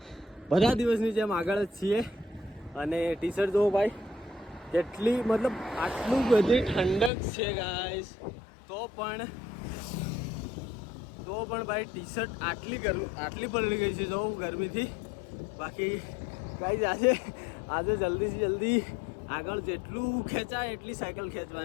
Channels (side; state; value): right; drops out; at 7.1 s